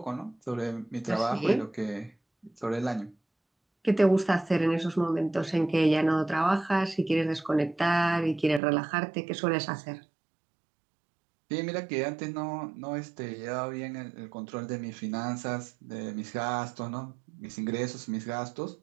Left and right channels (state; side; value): drops out; left; at 8.6 s